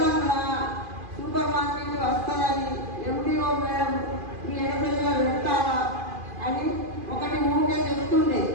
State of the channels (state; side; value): late; left; 2.4 ms